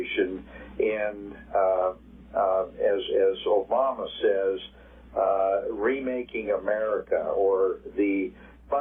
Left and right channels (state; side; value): identical; both; correlation 1.00